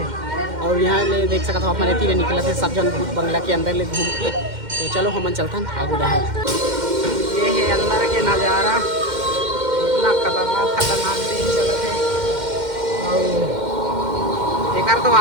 और यहाँ ले देख सकते हो आप मन तीन निकला थे सब जन भूत बंगला के अंदर ले घूम के। तो चलो हमन चलते हैं आगू डहर। ये है अंदर के नज़ारा, इतना खतरनाक दिन चलते है। और एक तो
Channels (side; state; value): left; late; 2.1 ms